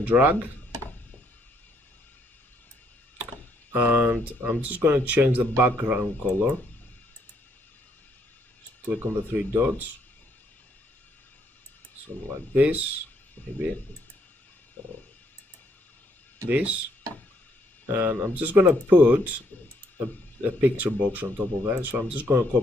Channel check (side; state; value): both; normal; correlation 0.71